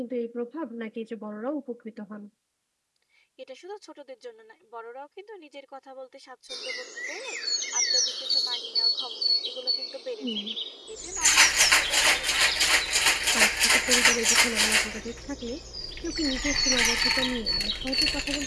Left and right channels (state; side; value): identical; both; correlation 1.00